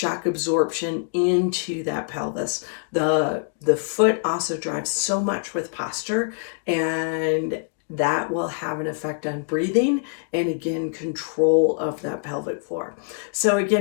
absorption into that pelvis. The foot also drives so much with posture, and that will have an effect on breathing and again control of that pelvic floor. So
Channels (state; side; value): silent; right; digital silence